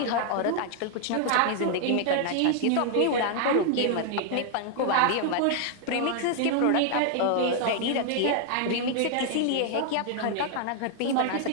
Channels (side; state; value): both; different; correlation 0.00